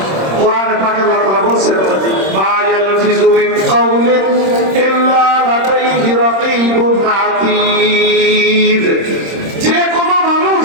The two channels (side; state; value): left; late; 26 ms